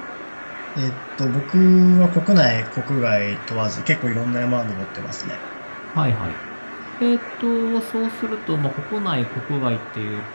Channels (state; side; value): inverted; both; correlation -1.00